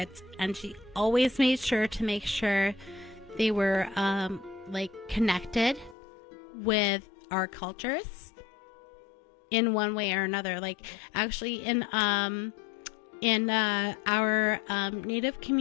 and she always made sure to make sure they were like connected with our cultures in one way or another. Like actually in our native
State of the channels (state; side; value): drops out; right; at 6.0 s